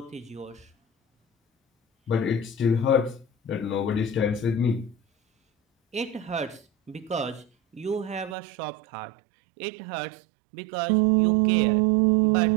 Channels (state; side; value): drops out; left; at 8.3 s